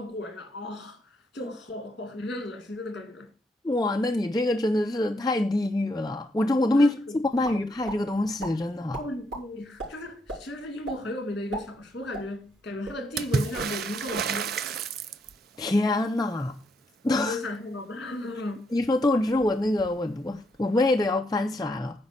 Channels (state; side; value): normal; both; correlation 0.76